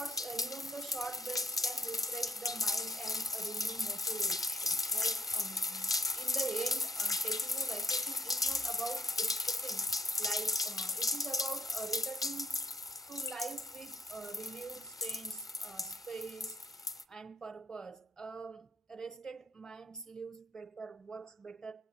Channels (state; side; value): normal; both; correlation 0.60